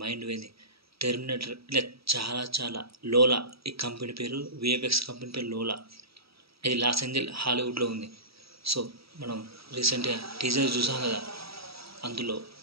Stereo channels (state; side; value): late; left; 0.76 ms